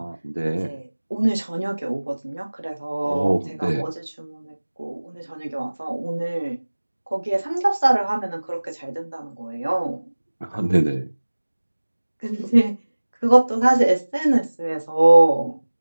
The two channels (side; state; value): both; inverted; correlation -1.00